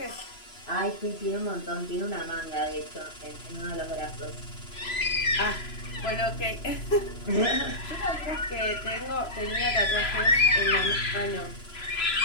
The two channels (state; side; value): late; right; 3.0 ms